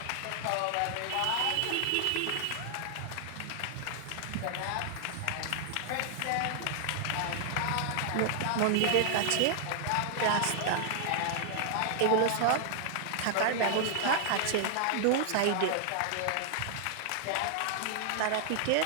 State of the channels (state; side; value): different; both; correlation 0.00